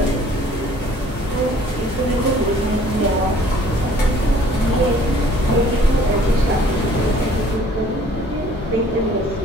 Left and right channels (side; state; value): both; normal; correlation 0.56